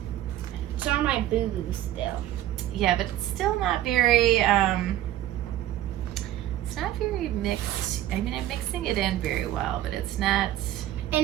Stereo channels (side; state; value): left; quieter; 13.3 dB